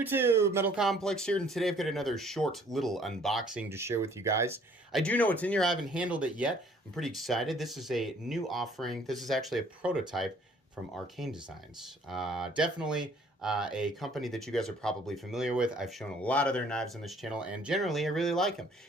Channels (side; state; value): both; normal; correlation 0.58